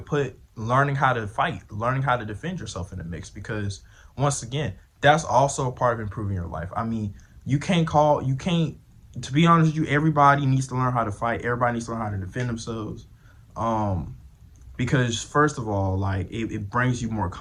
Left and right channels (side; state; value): both; identical; correlation 1.00